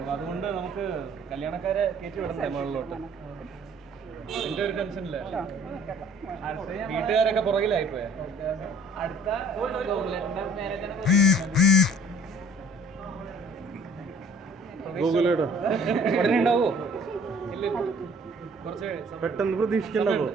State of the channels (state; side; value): normal; both; correlation 0.54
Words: അതുകൊണ്ട് നമുക്ക് കല്യാണക്കാരെ കയറ്റി വിടണ്ടേ മുകളിലോട്ട്. എന്റെ ഒരു ടെൻഷനില്ല. വീട്ടുകാരൊക്കെ പുറകിലായിപ്പോയാ. അടുത്ത ഉടനെ ഉണ്ടാവോ? ഇല്ല, കുറച്ച് പെട്ടെന്ന് പ്രതീക്ഷിക്കണ്ടോ?